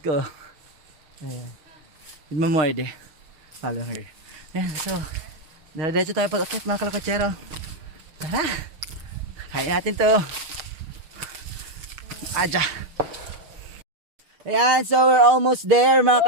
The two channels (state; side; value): late; left; 6.4 ms